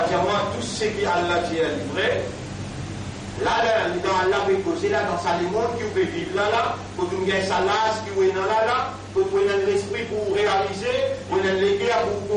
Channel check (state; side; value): identical; both; correlation 1.00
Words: comment tout ce qui Allah dit est livré. Là, dans Allah peut causer, là, dans sa monde qui peut vivre là, pour nous gagner sa lasse qui est là, pour nous donner l'esprit pour réaliser, pour nous donner l'équerre pour